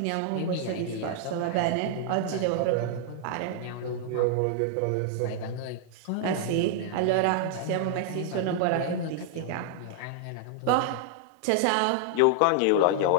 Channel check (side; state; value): both; different; correlation -0.01